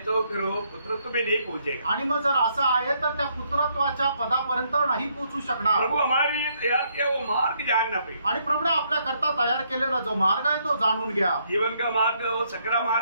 तो फिर वो पुत्रत्व में नहीं पहुंचेगा. आणि मग जर असं आहे तर त्या पुत्रत्वाच्या पदापर्यंत नाही पोहोचू शकणार. प्रभु हमारे लिए तैयार किया वो मार्ग जानना पे, आणि प्रभूने आपल्या करता तयार केलेला जो मार्ग आहे तो जाणून घ्या. जीवन का मार्ग वो सकरा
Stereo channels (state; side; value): inverted; both; correlation -0.72